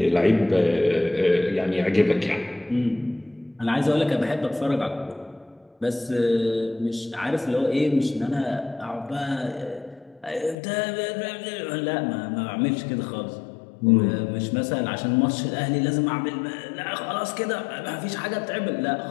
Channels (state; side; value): drops out; right; at 10.6 s